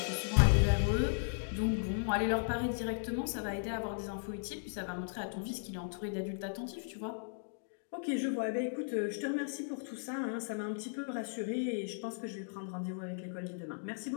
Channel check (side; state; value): right; silent; digital silence